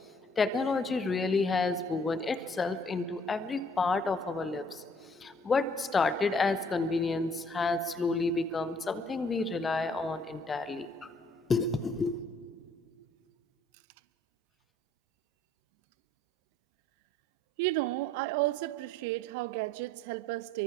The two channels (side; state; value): both; normal; correlation 0.61